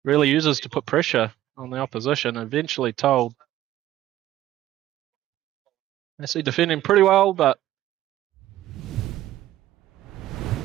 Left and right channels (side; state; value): left; quieter; 14.0 dB